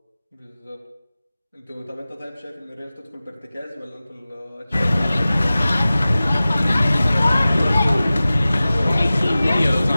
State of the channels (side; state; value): both; inverted; correlation -0.97